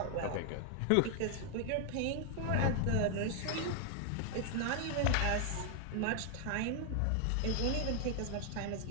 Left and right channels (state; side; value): different; both; correlation 0.00